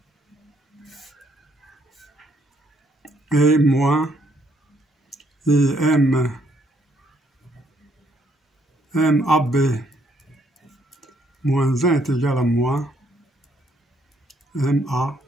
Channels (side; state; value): both; normal; correlation 0.70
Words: moins MAB moins 1 est égal à moins MA